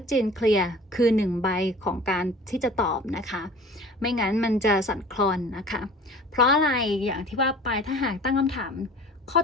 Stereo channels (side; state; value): both; normal; correlation 0.44